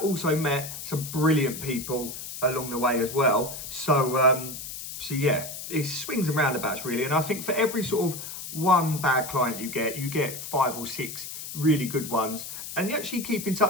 also met some brilliant people along the way as well. So, yeah, it swings and roundabouts really. And I think for every sort of one bad client you get 5 or 6 really good ones. And you actually keep in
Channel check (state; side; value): noise; left; hiss, 9 dB below the sound